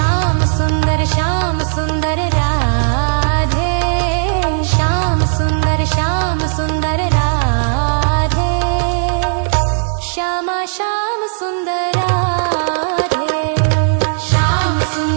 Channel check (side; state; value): left; silent; digital silence